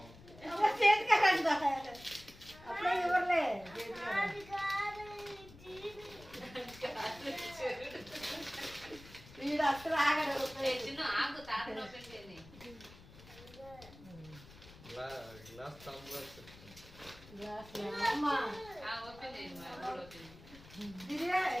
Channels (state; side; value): noise; left; rumble, 19 dB below the sound